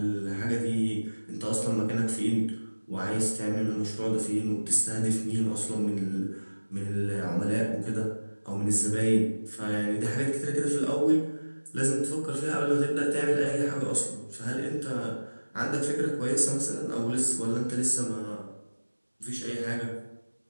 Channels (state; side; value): inverted; both; correlation -1.00